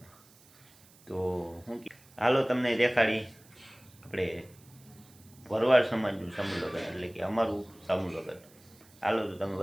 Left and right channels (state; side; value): noise; right; hiss, 26 dB below the sound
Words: તો હું હાલો તમને દેખાડી આપણે ભરવાડ સમાજનું સમૂહ લગ્ન, એટલે કે અમારું સમૂહ લગ્ન. હાલો તો તમે